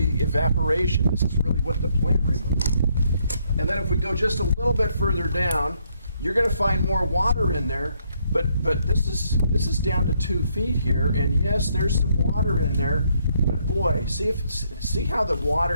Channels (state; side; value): inverted; both; correlation -0.72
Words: evaporation. This is really what the plant removed. And then if we go just a little bit further down, you're going to find more water in there. But this is down to 2 feet here, and yes, there's some water in there. But boy, see how the